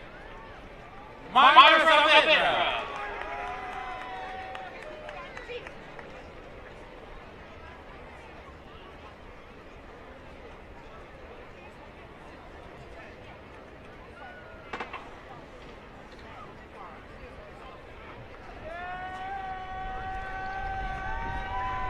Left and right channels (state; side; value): identical; both; correlation 1.00